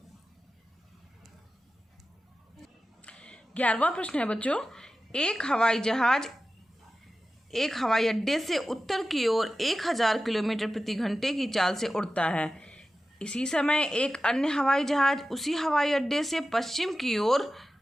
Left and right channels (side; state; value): both; normal; correlation 0.94